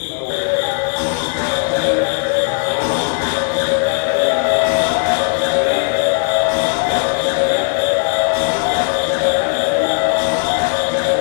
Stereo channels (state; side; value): silent; right; 59 dB below the other